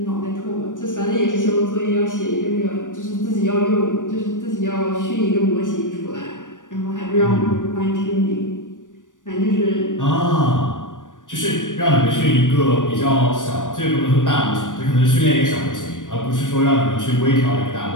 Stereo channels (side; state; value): right; late; 0.88 ms